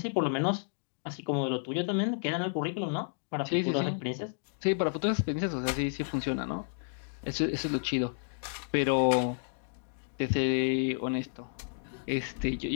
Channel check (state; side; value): silent; right; digital silence